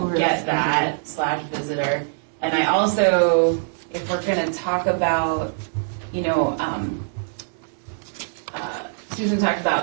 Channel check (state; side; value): silent; left; digital silence